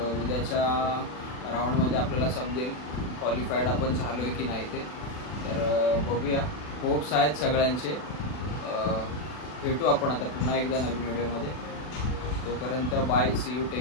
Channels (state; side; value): late; right; 40 ms